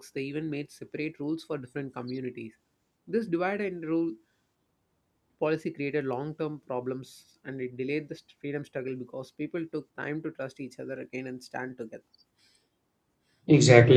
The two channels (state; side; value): identical; both; correlation 1.00